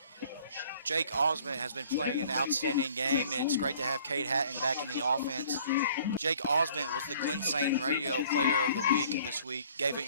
Jake Osmond has been playing an outstanding game. It's great to have Cade Hatton back in the offense. Jake Osmond was the Glen Saint Radio Player of the Week this week. Gave an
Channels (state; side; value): inverted; both; correlation -0.55